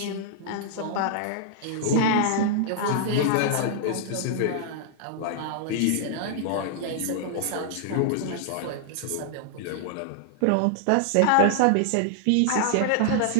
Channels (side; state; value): both; different; correlation -0.01